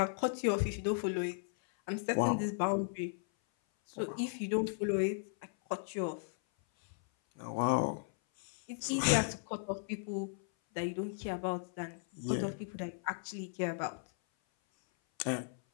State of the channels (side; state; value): right; silent; 54 dB below the other